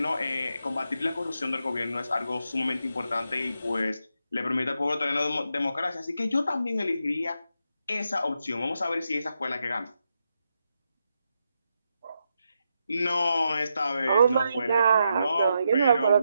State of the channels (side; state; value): both; inverted; correlation -0.84